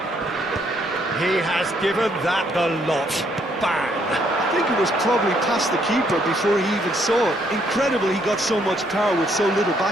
He has given that the lot. Bang! I think it was probably past the keeper before he even saw it. Incredible he got so much power with so little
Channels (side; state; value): both; normal; correlation 0.70